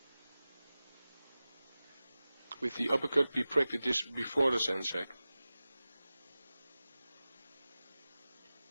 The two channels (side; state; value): both; inverted; correlation -0.97